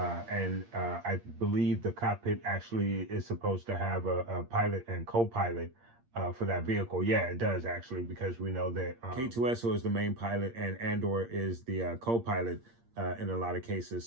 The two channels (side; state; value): left; late; 8.6 ms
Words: I believe the cockpit actually is supposed to have a pilot and co-pilot for that vehicle. Yeah, it does actually, because we know that K2SO is the main pilot and Andor is the co-pilot in a lot of cases.